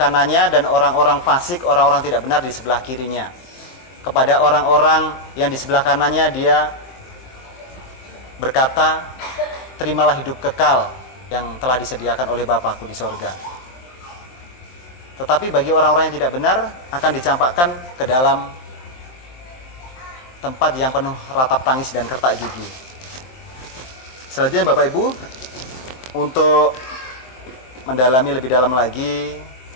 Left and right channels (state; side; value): late; right; 23 ms